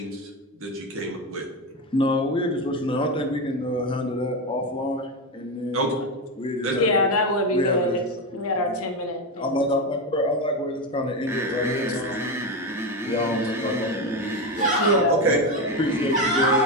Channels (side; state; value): both; normal; correlation 0.14